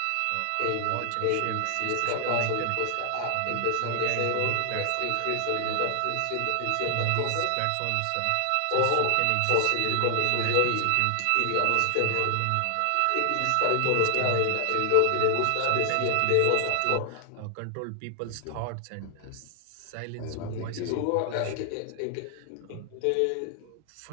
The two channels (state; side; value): different; both; correlation 0.00